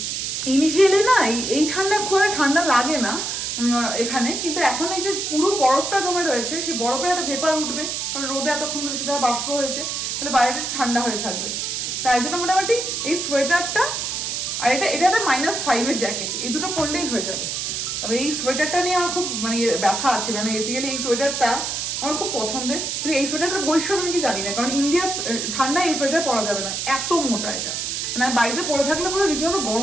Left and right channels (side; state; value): right; noise; hiss, 2 dB below the sound